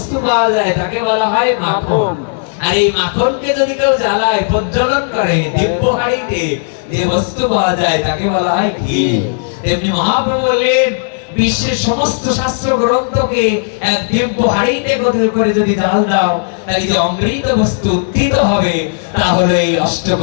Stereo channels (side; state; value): right; silent; digital silence